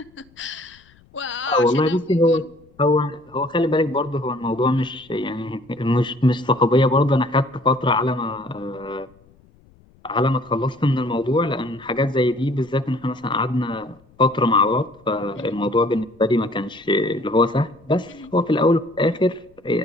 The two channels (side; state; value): left; noise; rumble, 30 dB below the sound